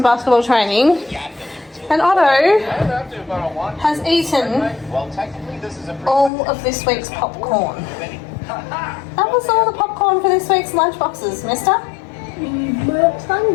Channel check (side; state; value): right; drops out; at 6.3 s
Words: basketball training, and Otto has eaten all of this week's popcorn. That was all the popcorn for this week's lunch boxes, mister. I'm